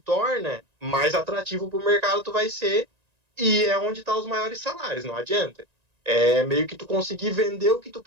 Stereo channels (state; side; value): late; left; 1.9 ms